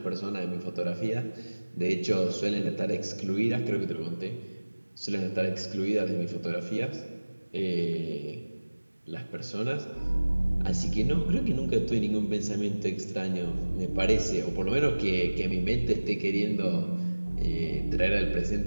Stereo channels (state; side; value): inverted; both; correlation -1.00